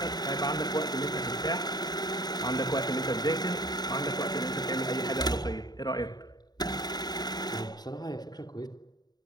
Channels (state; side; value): late; right; 0.20 ms